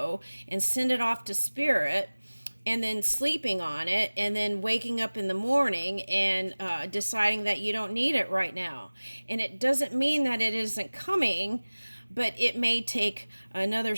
and send it off to spirit, and then sleeping on it, and then waking up in the morning and deciding that you don't need it right now. And it doesn't mean that it isn't coming, but it may take another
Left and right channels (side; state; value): both; inverted; correlation -1.00